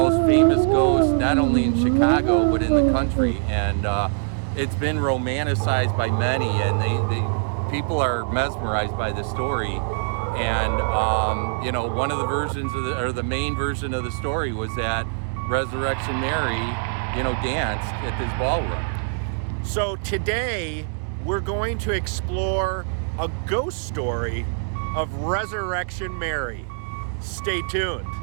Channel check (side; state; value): left; silent; digital silence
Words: famous ghosts, not only in Chicago but in the country. And it's been romanticized by many, and they people are mesmerized by the story. And one of the versions of the main version of the story was that Resurrection Mary, danced at this ballroom. So today we're going to explore a ghost story of Resurrection Mary. Stay tuned.